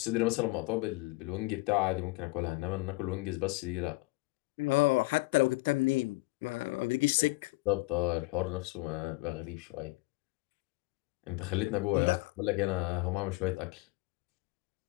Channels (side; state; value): right; quieter; 23.4 dB